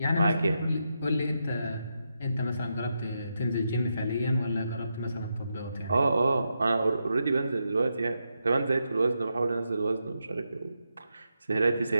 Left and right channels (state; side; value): inverted; both; correlation -0.84